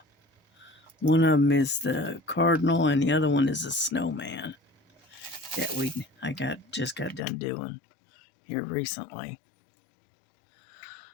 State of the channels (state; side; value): drops out; right; at 7.2 s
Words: One of them is the cardinal and the other one is a snowman that I just got done doing here recently.